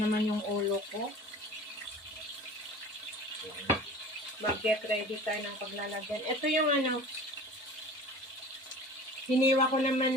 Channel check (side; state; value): both; normal; correlation 0.40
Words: yung ulo ko. Mag-get ready tayo ng paglalagyan. Ito yung hiniwa ko